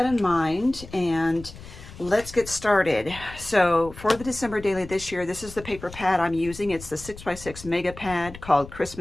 in mind and let's get started. So for the December daily this year, this is the paper pad I'm using. It's the 6x6 mega pad called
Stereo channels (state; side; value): noise; left; rumble, 16 dB below the sound